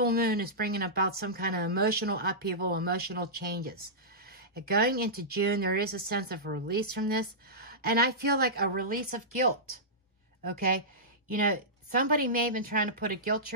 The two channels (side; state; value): both; normal; correlation -0.15